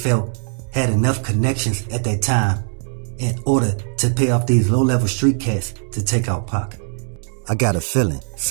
had enough connections at that time in order to pay off these low-level street cats to take out Pac. I got a feeling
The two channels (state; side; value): silent; left; 61 dB below the other